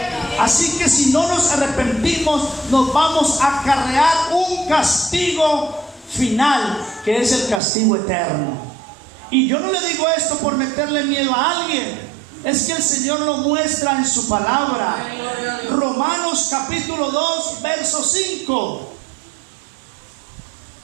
Así que si no nos arrepentimos, nos vamos a acarrear un castigo final, que es el castigo eterno. Y yo no le digo esto por meterle miedo a alguien, es que el Señor lo muestra en su palabra. Romanos capítulo 2, verso 5.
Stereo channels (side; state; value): left; drops out; at 7.6 s